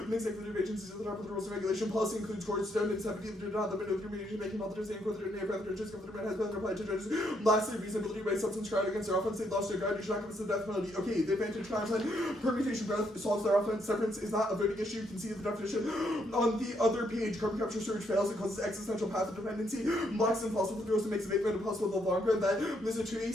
makes executive agencies at the top of the rules of regulation. Policy includes courts, don't and 70 do not limit of remediation making multiple saying for the name of the judges government has been applied to judges. Lastly, reasonability by substance crowd against their offense. They lost their guide. You should not give us the death penalty. Okay, the advantage timeline permutation growth solves their offense. Severance is not a voting issue. You can see the definition on the other page. Carbon capture storage fails. It causes existential path of dependency. Blocks impossible for those who makes abatement impossible in the long run. That there's a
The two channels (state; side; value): normal; both; correlation 0.74